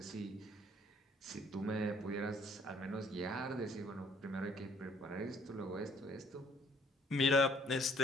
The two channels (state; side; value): normal; both; correlation 0.61